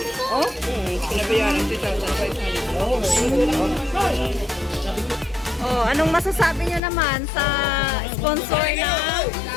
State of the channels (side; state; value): right; drops out; at 6.8 s